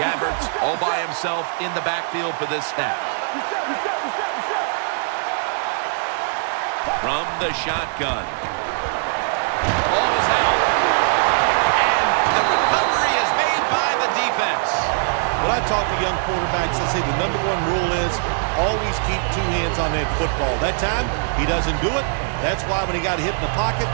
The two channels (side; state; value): left; silent; digital silence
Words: all by himself in the backfield for this snap. From the shotgun. Ball is out. And the recovery is made by the defense. When I talk to young quarterbacks, I say the #1 rule is always keep two hands on that football. That time, he doesn't do it. That's why when he got hit in the pocket,